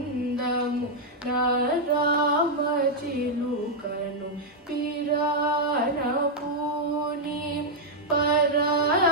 Naramachilukanu Pirana Puni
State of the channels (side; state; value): both; normal; correlation -0.03